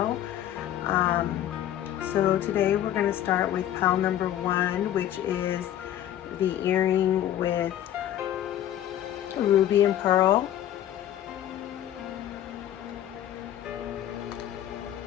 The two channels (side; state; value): right; quieter; 11.8 dB